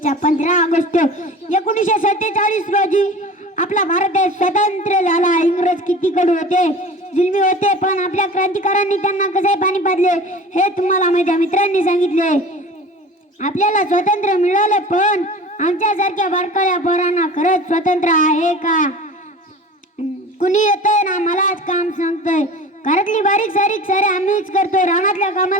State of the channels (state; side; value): normal; both; correlation 0.38